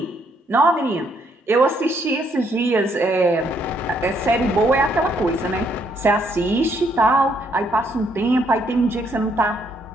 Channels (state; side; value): normal; both; correlation 0.71